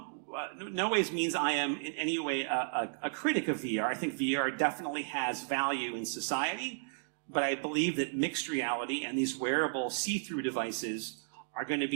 ways means I am in any way a critic of VR. I think VR definitely has value in society, but I believe that mixed reality and these wearable see-through devices are going to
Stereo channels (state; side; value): silent; left; digital silence